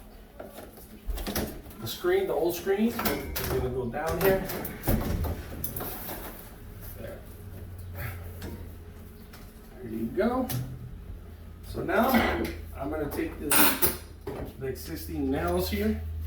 The screen, the old screen, is going to go down here. There. There you go. So now I'm going to take the existing nails here,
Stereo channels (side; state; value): both; identical; correlation 1.00